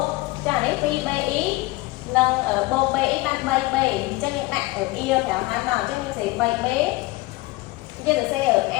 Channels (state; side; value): quieter; right; 21.2 dB